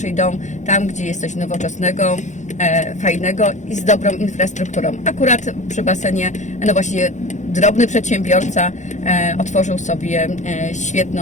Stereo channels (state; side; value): late; right; 0.35 ms